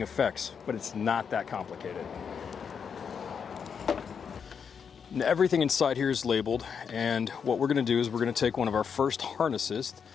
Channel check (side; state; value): right; quieter; 6.7 dB